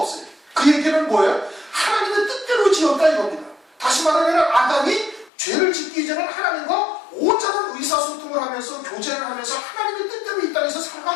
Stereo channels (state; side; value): drops out; right; at 5.3 s